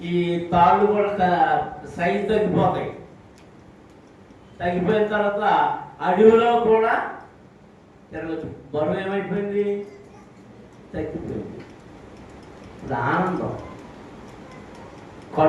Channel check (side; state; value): both; identical; correlation 1.00